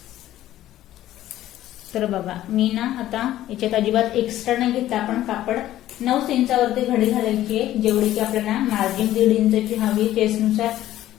तर बघा, मी ना आता याच्यात अजिबात एक्स्ट्रा नाही घेतला। आपण कापड 9 इंचावरती घडी घालायची आहे, जेवढी की आपल्याला मार्जिन 1.5 इंचाची हवी चेस्टनुसार।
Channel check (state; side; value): quieter; right; 13.6 dB